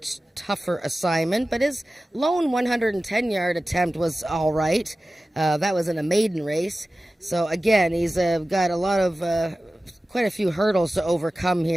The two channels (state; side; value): normal; both; correlation 0.96